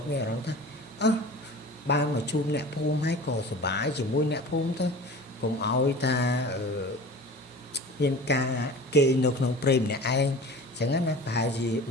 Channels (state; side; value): normal; both; correlation 0.38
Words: មានអារម្មណ៍ថាបានមកជួបអ្នកភូមិហើយក៏សប្បាយជាមួយអ្នកភូមិទៅកុំឲ្យថាមានការគេនៅក្នុងព្រៃម្នាក់ឯងអញ្ចឹងណាប្រហែលជា